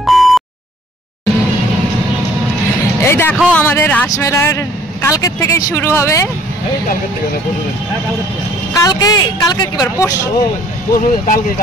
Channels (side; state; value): both; normal; correlation 0.57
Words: এই দেখো আমাদের রাসমেলার কালকের থেকেই শুরু হবে। কালকে কালকে কি বার?